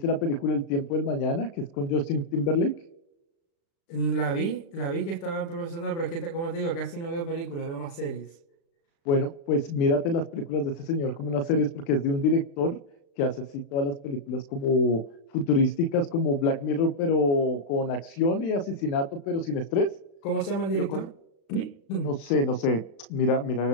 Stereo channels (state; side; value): late; right; 36 ms